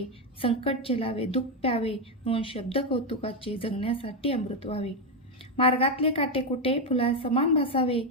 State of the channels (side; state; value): both; normal; correlation 0.06